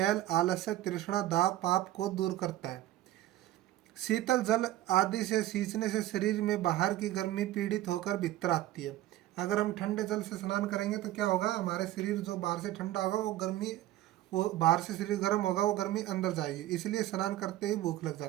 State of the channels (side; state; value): left; quieter; 14.5 dB